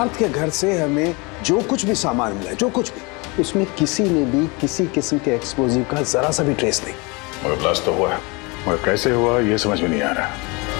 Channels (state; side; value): quieter; right; 27.9 dB